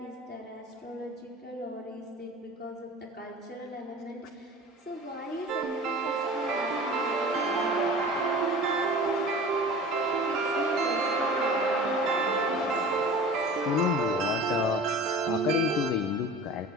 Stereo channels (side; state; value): both; normal; correlation 0.40